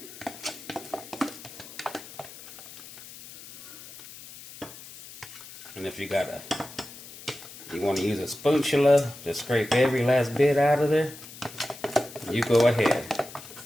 And if you want to use a spatula to scrape every last bit out of there, you go ahead.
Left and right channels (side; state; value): left; noise; hiss, 16 dB below the sound